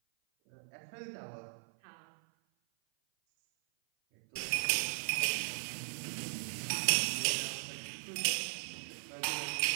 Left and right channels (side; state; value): left; silent; 53 dB below the other